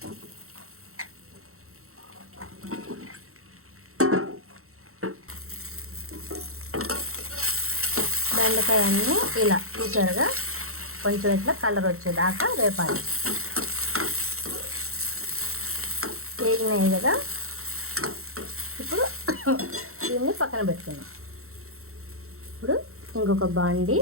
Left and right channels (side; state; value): left; late; 0.63 ms